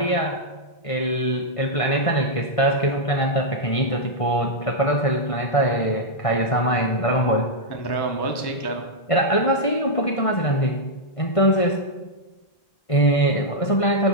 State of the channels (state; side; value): late; right; 1.5 ms